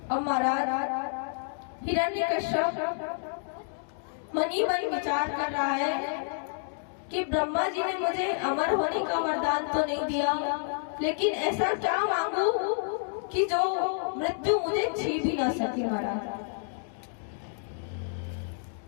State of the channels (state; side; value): silent; right; digital silence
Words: अब महाराज हिरण्यकश्यप मनी मन विचार कर रहा है कि ब्रह्मा जी ने मुझे अमर होने का वरदान तो नहीं दिया, लेकिन ऐसा क्या मांगू कि जो मृत्यु मुझे छीन भी ना सके महाराज।